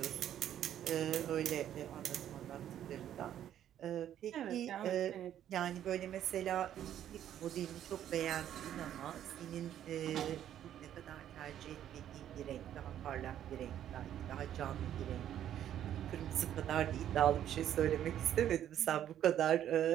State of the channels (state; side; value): quieter; left; 10.9 dB